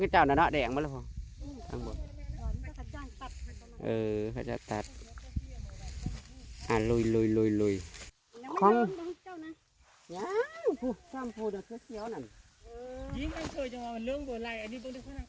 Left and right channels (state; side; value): identical; both; correlation 1.00